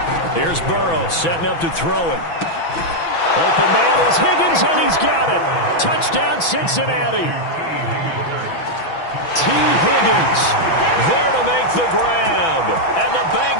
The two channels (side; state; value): right; late; 6.0 ms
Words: Here's Burrow setting up to throw it. Open man is Higgins, and he's got it. Touchdown, Cincinnati. T. Higgins there to make the grab, and the